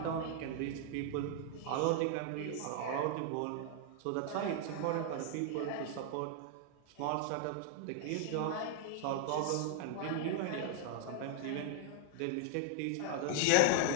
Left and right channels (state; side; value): different; both; correlation 0.00